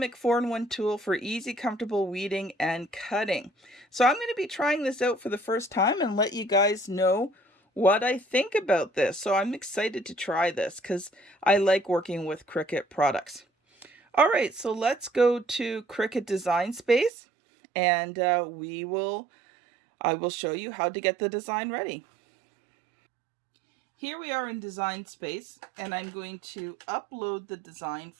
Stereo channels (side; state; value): left; drops out; at 17.1 s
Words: 4-in-1 tool for easy, comfortable weeding and cutting. So I'm going to be trying this out for the first time and let you guys know what I think about this. So I'm excited to try this because I like working with Cricut products. All right, so let's go to Cricut Design Space, and I will show you how to get the design ready. Here we are in Design Space, and I'm going to upload the design